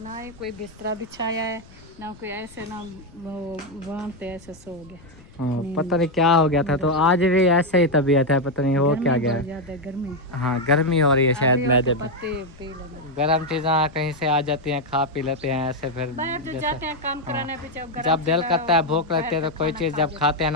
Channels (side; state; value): left; noise; rumble, 23 dB below the sound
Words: ही कोई बिस्तरा बिछाया है ना कोई, ऐसे ना वहाँ पे ऐसे सो गया। हाँ पता नहीं क्या हो गया था। तो आज भी ऐसे ही तबीयत है, पता नहीं हो क्या गया है। गर्मी, हाँ गर्मी हो रही है शायद मैदे में। गर्म चीज़ें कहीं से आ जाती हैं, खा पी लेते हैं ऐसे। फिर जाते हैं काम कराने पे, जब दिल करता है भूख लगती है तो कोई चीज़ जब खाते हैं